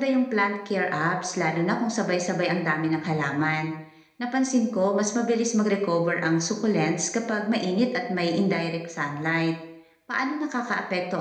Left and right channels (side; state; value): both; identical; correlation 1.00